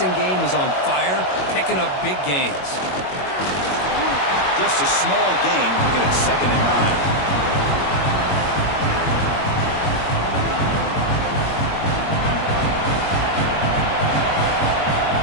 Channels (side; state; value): right; late; 21 ms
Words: game is on fire, picking up big gains. Just a small gain, looking at 2nd and 9.